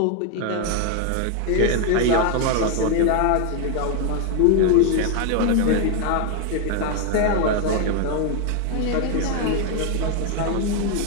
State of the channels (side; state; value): both; different; correlation 0.01